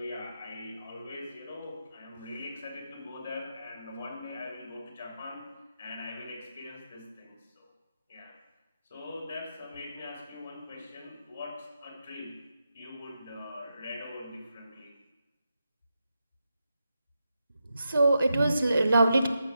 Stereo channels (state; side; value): inverted; both; correlation -0.86